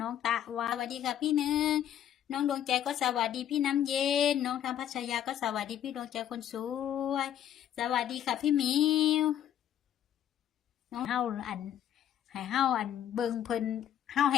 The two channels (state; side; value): quieter; right; 10.6 dB